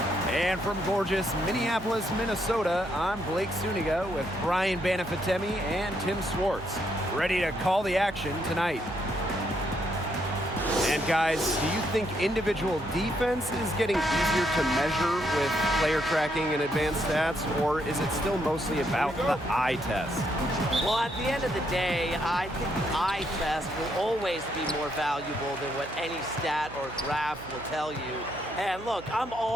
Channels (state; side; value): noise; right; hum, 15 dB below the sound